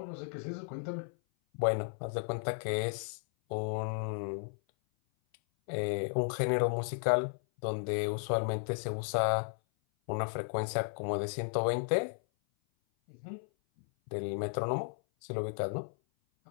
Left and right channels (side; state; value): right; silent; 55 dB below the other